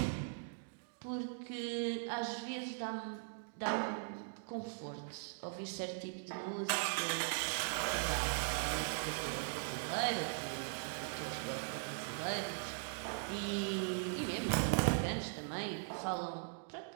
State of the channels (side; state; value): left; silent; digital silence